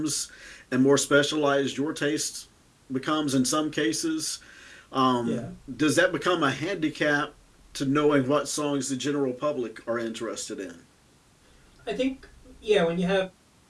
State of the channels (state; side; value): identical; both; correlation 1.00